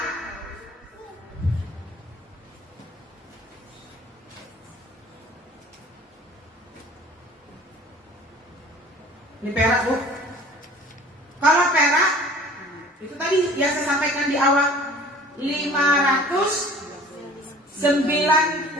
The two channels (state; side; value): normal; both; correlation 0.48